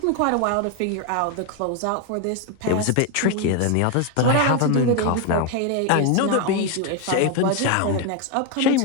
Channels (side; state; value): both; different; correlation 0.01